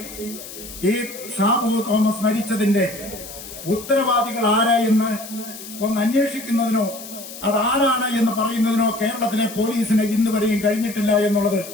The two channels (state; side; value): noise; left; hiss, 13 dB below the sound